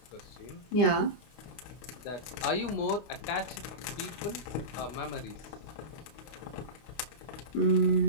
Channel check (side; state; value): right; late; 25 ms